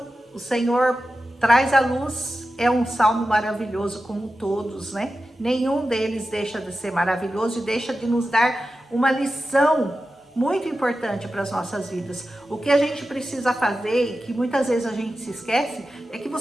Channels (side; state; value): both; normal; correlation 0.92